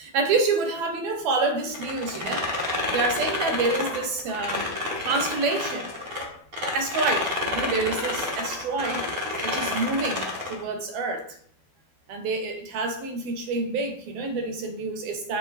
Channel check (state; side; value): late; left; 12 ms